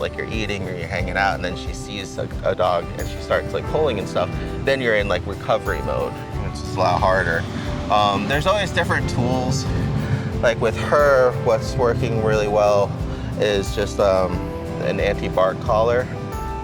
you're eating or you're hanging out and then she sees a dog and she starts like pulling and stuff, then you're in like recovery mode, which is a lot harder. There's always different tools. Like with her, what's working really well is just an anti-bark collar.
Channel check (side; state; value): both; identical; correlation 1.00